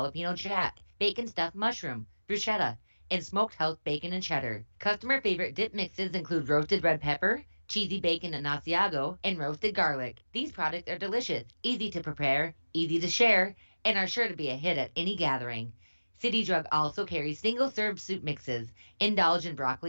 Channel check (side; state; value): both; inverted; correlation -1.00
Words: jack, bacon stuffed mushroom, bruschetta, and smoked house bacon and cheddar. Customer favorite dip mixes include roasted red pepper, cheesy bacon and Asiago, and roasted garlic. These products are delicious, easy to prepare, easy to share, and are sure to be a hit at any gathering. City Drug also carries single-serve soup mixes. Indulge in